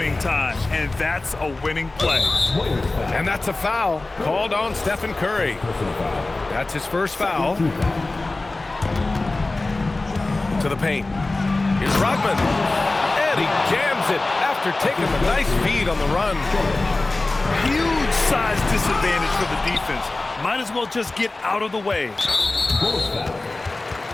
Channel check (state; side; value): quieter; right; 3.1 dB